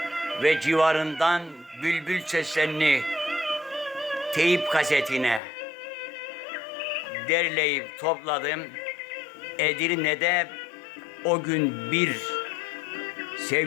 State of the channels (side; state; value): right; drops out; at 5.4 s